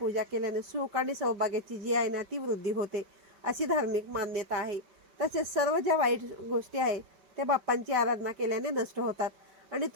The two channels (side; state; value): left; late; 5.2 ms